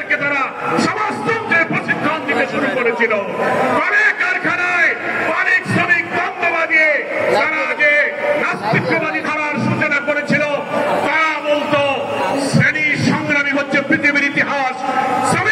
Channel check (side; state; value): both; identical; correlation 1.00